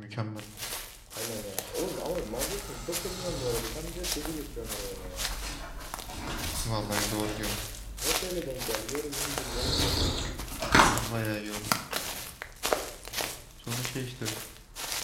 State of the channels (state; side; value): identical; both; correlation 1.00